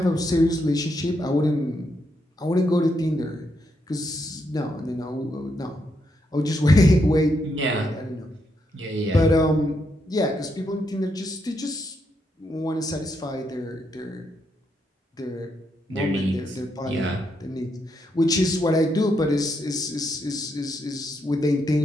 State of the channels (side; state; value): both; normal; correlation 0.79